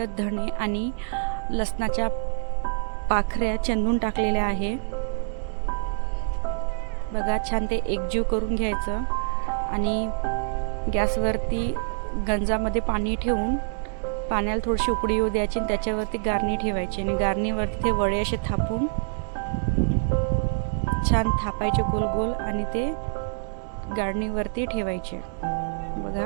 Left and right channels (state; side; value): silent; left; digital silence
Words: धणे आणि लसणाच्या पाखऱ्या चेंदून टाकलेल्या आहे बघा। छान ते एकजीव करून घ्यायचं आणि गॅसवरती गंजामध्ये पाणी ठेवून पाण्याला थोडीशी उकळी येऊ द्यायची आणि त्याच्यावरती गारणी ठेवायची आणि गारणीवरती ते वडे असे थापून छान थापायचे गोल गोल आणि ते गारणीवरती ठेवायचे